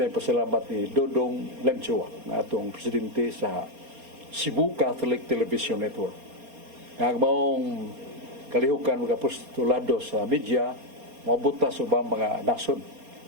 pasalamat ni Dodong Lanchoa na atong presidente sa Cebu Catholic Television Network. Ang maong kalihukan mga postulado sa media, mabuta sa ubang mga nasod,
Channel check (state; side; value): late; left; 4.3 ms